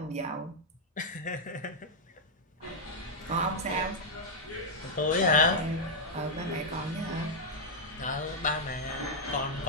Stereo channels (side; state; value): both; normal; correlation -0.05